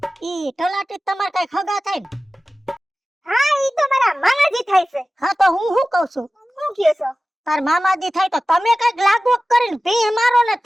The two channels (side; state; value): both; normal; correlation 0.96